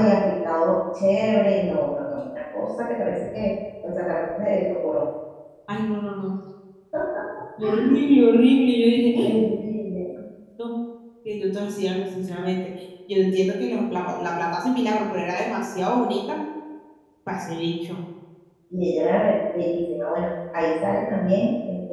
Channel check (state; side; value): identical; both; correlation 1.00